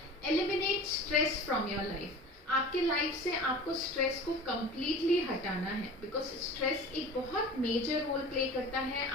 eliminate stress from your life. आपके लाइफ से आपको स्ट्रेस को कम्प्लीटली हटाना है, बिकॉज स्ट्रेस एक बहुत मेजर रोल प्ले करता है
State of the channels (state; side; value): normal; both; correlation 0.38